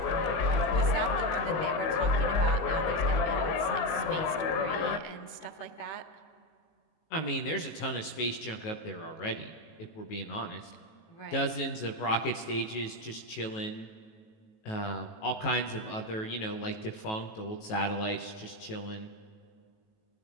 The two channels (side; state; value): right; late; 19 ms